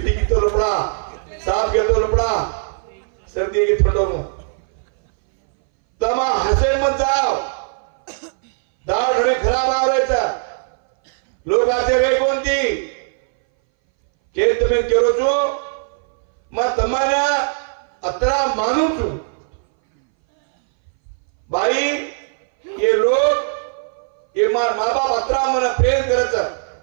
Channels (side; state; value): left; silent; 62 dB below the other